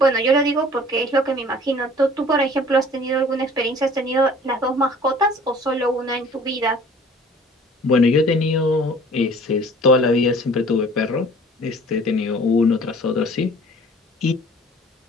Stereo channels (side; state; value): both; normal; correlation 0.49